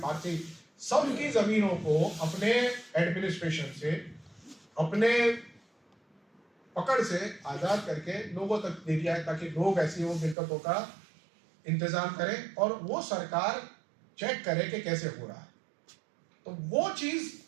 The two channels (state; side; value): drops out; left; at 10.4 s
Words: पारसी सबकी जमीनों को अपने एडमिनिस्ट्रेशन से, अपने पकड़ से आजाद करके लोगों तक दे दिया है, ताकि लोग ऐसी वो मिल्कतों का इंतजाम करें और वो सरकार चेक करे कि कैसे हो रहा है। तो वो चीज